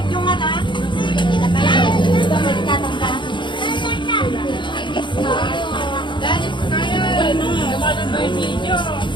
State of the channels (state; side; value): late; right; 0.23 ms